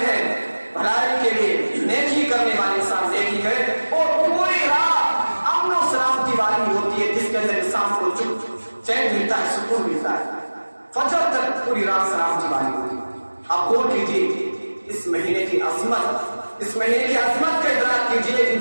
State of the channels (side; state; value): both; inverted; correlation -1.00